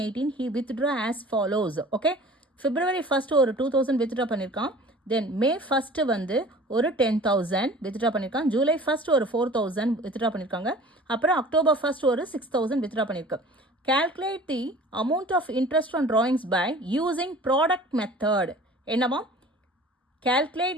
he withdrew as follows. Okay. February 1st ஒரு 2000 withdraw பண்ணியிருக்கான். Then May 1st வந்து ஒரு 10,000 withdraw பண்ணியிருக்கான். July 1st ஒரு 4,000 withdraw பண்ணியிருக்காங்க. அப்புறம் October 1st ஒரு 6,000 withdraw பண்ணியிருக்கு. Calculate the amount of interest on drawings by using product method. என்னமா? Calculate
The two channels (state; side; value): normal; both; correlation 0.45